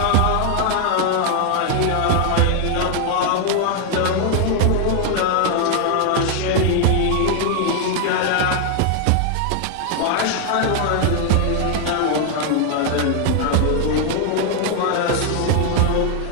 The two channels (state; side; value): different; both; correlation 0.00